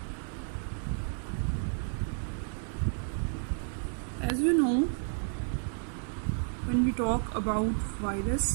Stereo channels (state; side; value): silent; left; 57 dB below the other